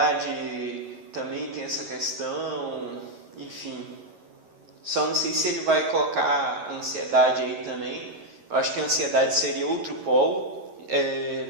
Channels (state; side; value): late; left; 11 ms